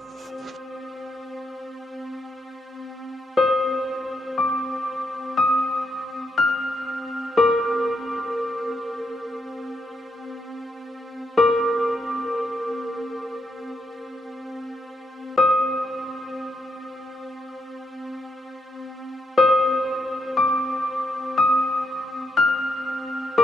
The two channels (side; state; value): both; normal; correlation 0.79